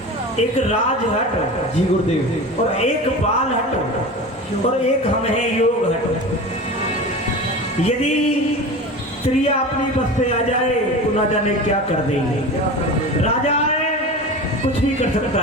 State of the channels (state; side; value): normal; both; correlation 0.31